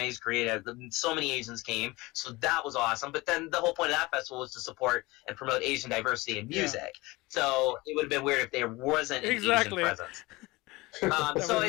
Korean. So many Asians came, so that was awesome. But then the whole point of that festival was to support and promote Asian diversity in music. Yeah. So it would have been weird if there wasn't an Asian presence. So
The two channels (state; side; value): quieter; right; 21.8 dB